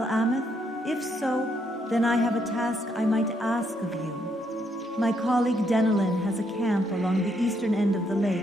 If so, then I have a task I might ask of you. My colleague Denelin has a camp along the eastern end of the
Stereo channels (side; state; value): both; normal; correlation 0.75